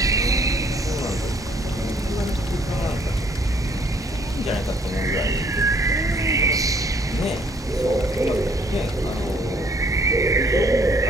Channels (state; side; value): normal; both; correlation 0.63